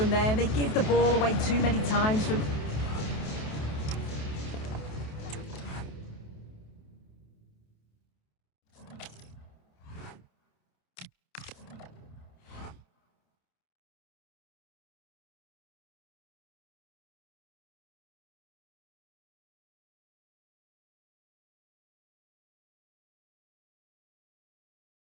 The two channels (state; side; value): late; right; 28 ms